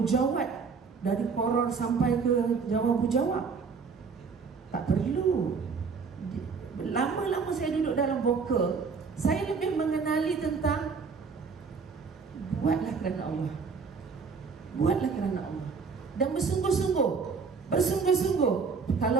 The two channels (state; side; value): quieter; left; 5.2 dB